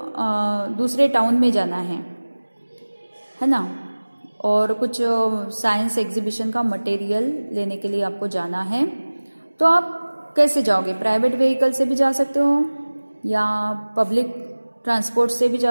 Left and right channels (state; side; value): inverted; both; correlation -1.00